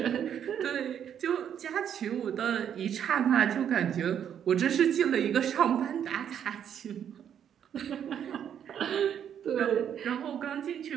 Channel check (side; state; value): left; quieter; 9.0 dB